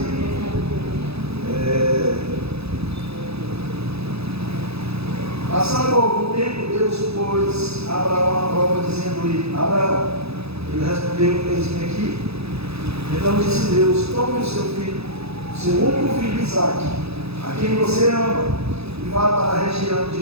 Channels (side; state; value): left; late; 0.78 ms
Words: Passando algum tempo, Deus pôs Abraão à prova, dizendo-lhe: Abraão. Ele respondeu: eis-me aqui. Então disse Deus: tome o seu filho, seu único filho Isaque, a quem você ama, e vá para a região de